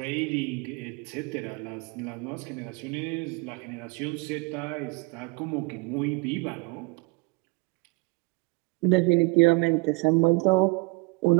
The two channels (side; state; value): left; quieter; 27.8 dB